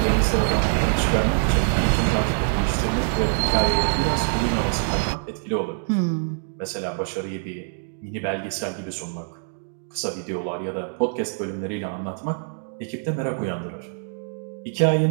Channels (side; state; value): left; silent; digital silence